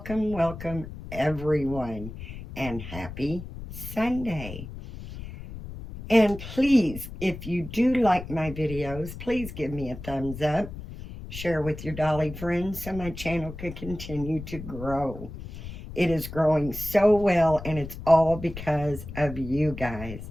everyone and happy Sunday. And please, if you do like my videos, please give me a thumbs up. Share with your Dolly friends so my channel can continue to grow. It is growing so well, and it's all because of you guys.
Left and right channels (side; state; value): left; noise; rumble, 11 dB below the sound